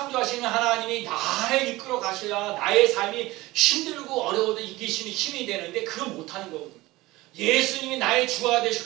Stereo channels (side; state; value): left; quieter; 19.4 dB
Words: 하나님이 나를 이끌어 가셔야 나의 삶이 힘들고 어려워도 이기시는 힘이 되는데 그걸 못하는 거거든요. 예수님이 나의 주가